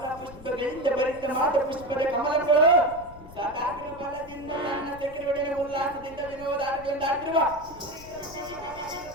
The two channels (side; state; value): left; noise; rumble, 18 dB below the sound